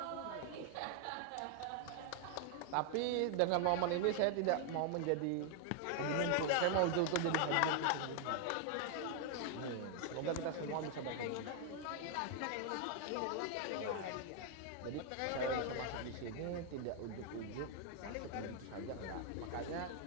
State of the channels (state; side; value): different; both; correlation 0.00